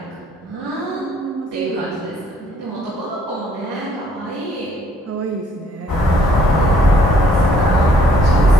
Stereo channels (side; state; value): both; normal; correlation 0.64